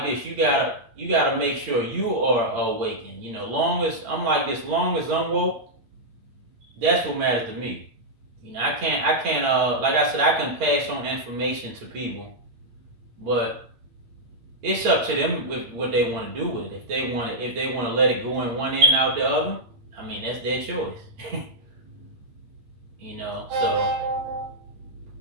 this. You gotta make sure you are awakened. Long as I'm like this, long as I'm woke, that's what matters to me. I can't like I said, I can pass on information to people, but it's up to them with what they want to do with it. If they want to let it go in one end out the other, I mean that's their choice. So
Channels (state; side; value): late; left; 8.8 ms